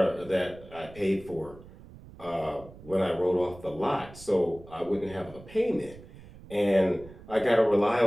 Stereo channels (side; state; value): right; noise; rumble, 19 dB below the sound